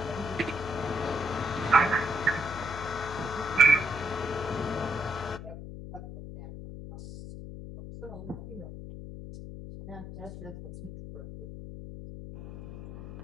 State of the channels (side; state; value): left; noise; hum, 11 dB below the sound